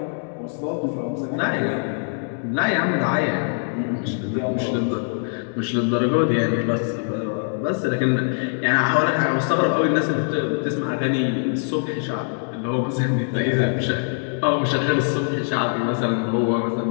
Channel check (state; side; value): silent; right; digital silence